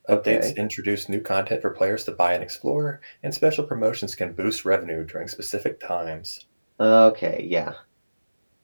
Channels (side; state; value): both; inverted; correlation -1.00